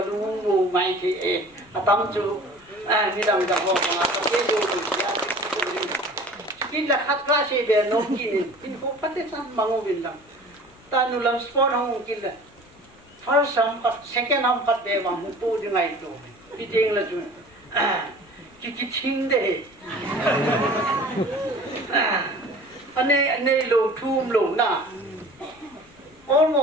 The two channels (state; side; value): noise; left; rumble, 30 dB below the sound